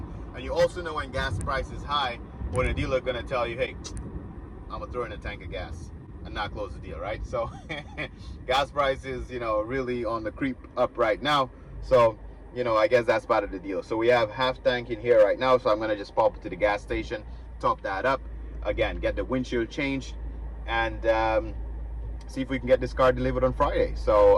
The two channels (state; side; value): identical; both; correlation 1.00